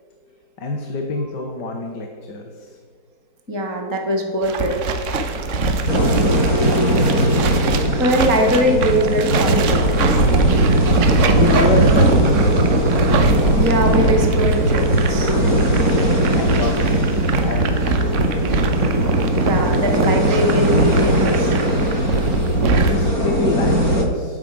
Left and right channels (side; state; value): right; late; 4.4 ms